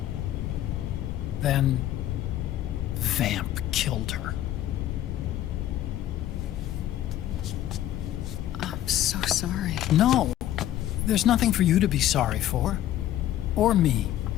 Then... Vamp killed her. I'm so sorry. No, there's nothing for you to be sorry for. Or me.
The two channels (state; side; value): quieter; right; 12.7 dB